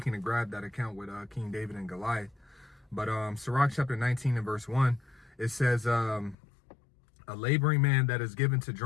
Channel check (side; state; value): right; drops out; at 6.4 s